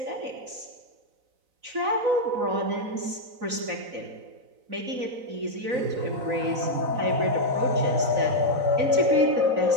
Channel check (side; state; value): left; late; 4.0 ms